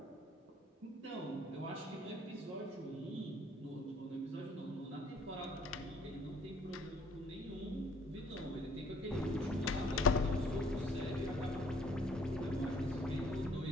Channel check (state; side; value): normal; both; correlation 0.60